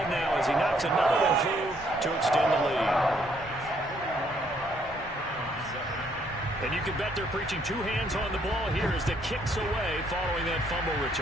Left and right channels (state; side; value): normal; both; correlation 0.68